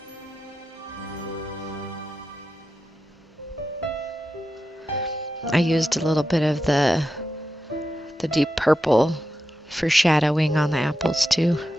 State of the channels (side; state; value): both; normal; correlation 0.89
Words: I used a little bit of the deep purple for shadowing on the apples too.